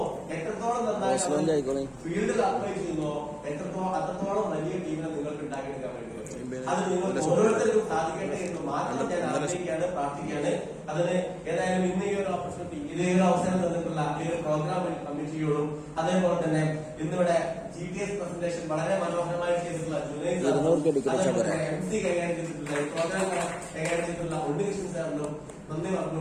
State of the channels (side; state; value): both; identical; correlation 1.00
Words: എത്രത്തോളം നന്നായി ഫീൽഡിൽ അപ്ലൈ ചെയ്യുന്നുവോ, അത്രത്തോളം വലിയ ടീമിനെ നിങ്ങൾക്ക് ഉണ്ടാക്കിയെടുക്കാൻ പറ്റും. അത് നിങ്ങൾക്ക് ഓരോരുത്തർക്കും സാധിക്കട്ടെ എന്ന് മാത്രം ഞാൻ ആഗ്രഹിക്കുകയാണ്, പ്രാർത്ഥിക്കുകയാണ്. അതിന് ഏതായാലും ഇന്ന് ഈ ഒരു ഓപ്പർച്യൂണിറ്റി, ഇതേ ഒരു അവസരം തന്നിട്ടുള്ള ഈ ഒരു പ്രോഗ്രാം കമ്മിറ്റിയോടും അതേപോലെ തന്നെ ഇന്നിവിടെ GTS പ്രസന്റേഷൻ വളരെ മനോഹരമായി ചെയ്തിട്ടുള്ള MC കൈകാര്യം ചെയ്തിട്ടുള്ള പ്രോഗ്രാം കൈകാര്യം ചെയ്തിട്ടുള്ള ഉണ്ണികൃഷ്ണൻ സാറിനും നന്ദി